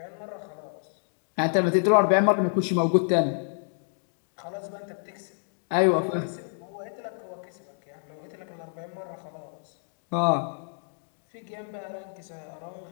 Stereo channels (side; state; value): right; silent; digital silence